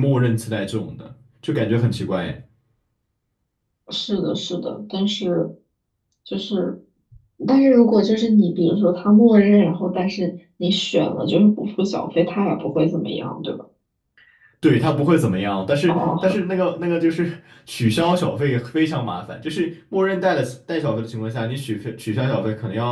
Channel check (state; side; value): identical; both; correlation 1.00